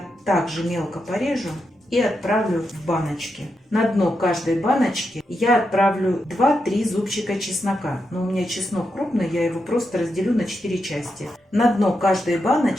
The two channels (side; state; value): both; normal; correlation 0.85